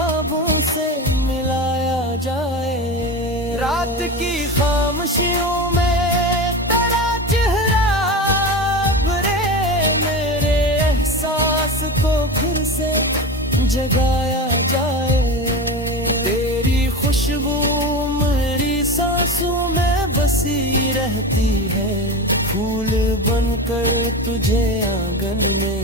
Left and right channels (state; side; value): normal; both; correlation 0.25